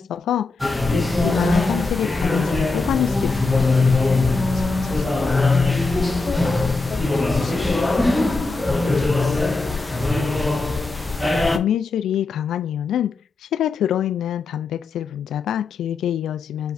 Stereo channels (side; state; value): right; quieter; 3.8 dB